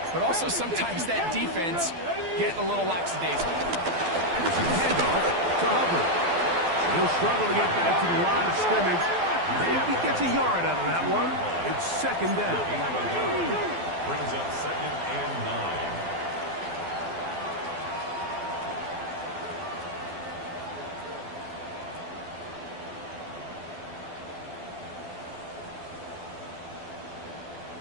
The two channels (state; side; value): late; left; 12 ms